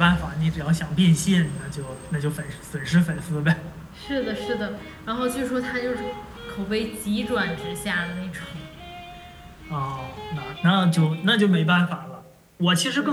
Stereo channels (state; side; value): identical; both; correlation 1.00